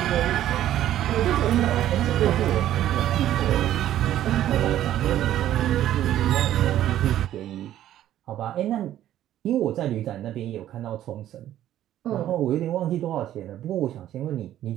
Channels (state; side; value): quieter; left; 12.4 dB